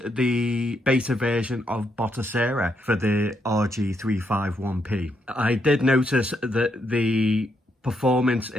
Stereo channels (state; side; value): normal; both; correlation 0.78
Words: the beta version of Batocera for the RG351P, I did notice that the performance